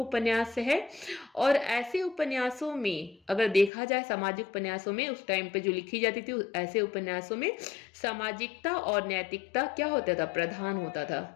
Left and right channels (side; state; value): right; drops out; at 3.7 s